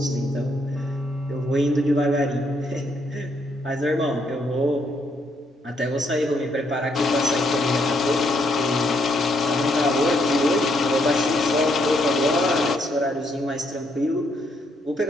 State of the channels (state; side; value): normal; both; correlation 0.73